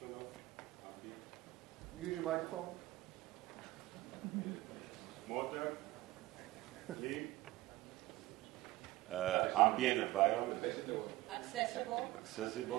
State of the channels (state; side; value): quieter; left; 18.0 dB